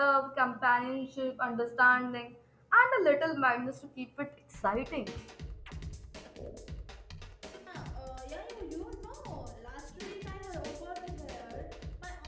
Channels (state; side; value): identical; both; correlation 1.00